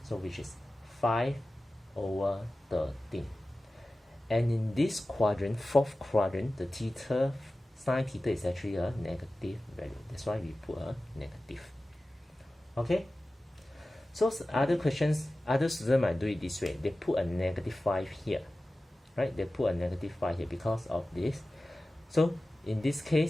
so which is 5 over 13. And in this quadrant, fourth quadrant, the theta, sine theta is actually a negative value. That's why we put a negative. Okay, so other questions, other students might do it this way. They put a -5 here, right? They put a -5 here because of this. So in this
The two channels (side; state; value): both; normal; correlation 0.96